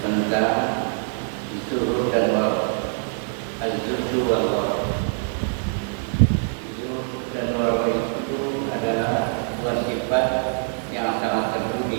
tentang zuhud dan waraq. Az-zuhud wal waraq. Zuhud dan waraq itu adalah dua sifat yang sangat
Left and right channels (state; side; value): silent; left; 63 dB below the other